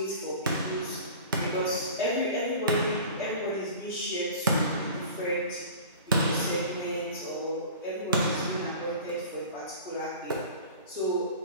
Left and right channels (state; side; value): inverted; both; correlation -0.40